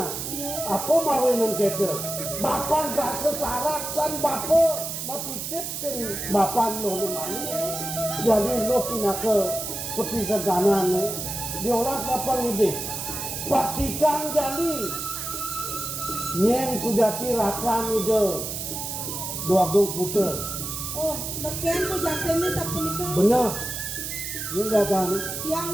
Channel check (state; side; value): noise; right; hiss, 5 dB below the sound